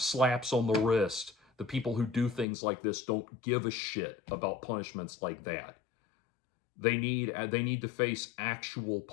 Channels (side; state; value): right; drops out; at 2.5 s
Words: on the wrist. The people who do things like this don't give a shit about punishments like that. They need to face actual